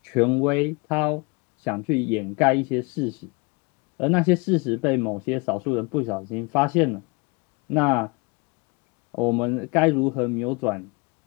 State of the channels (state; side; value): quieter; right; 29.1 dB